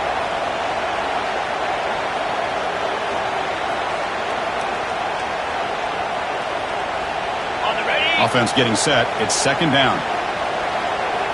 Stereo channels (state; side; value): identical; both; correlation 1.00